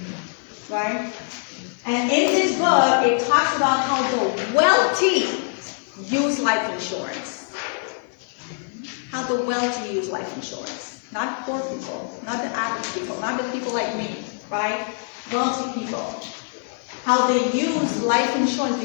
right? And in this book, it talks about how the wealthy use life insurance. How the wealthy use life insurance. Not poor people, not the average people, not the people like me, right? Wealthy people. How they use life insurance,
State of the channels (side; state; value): right; silent; 63 dB below the other